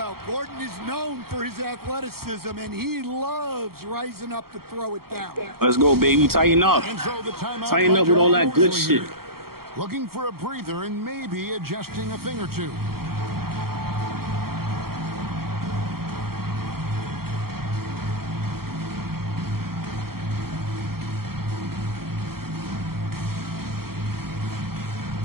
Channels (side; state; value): left; late; 0.94 ms